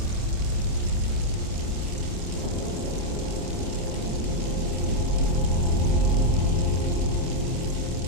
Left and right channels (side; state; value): left; late; 28 ms